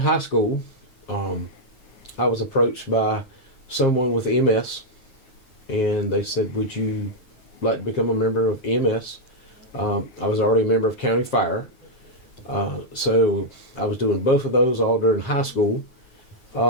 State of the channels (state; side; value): late; right; 9.4 ms